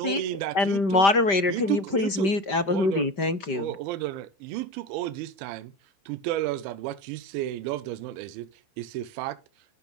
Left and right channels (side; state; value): right; late; 5.1 ms